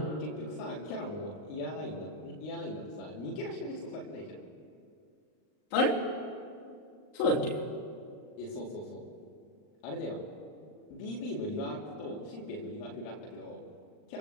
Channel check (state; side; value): late; right; 39 ms